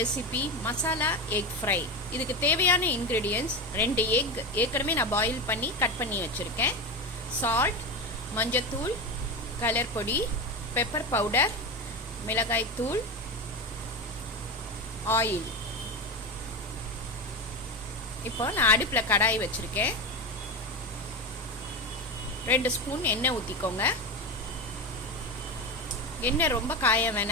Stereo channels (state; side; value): normal; both; correlation 0.19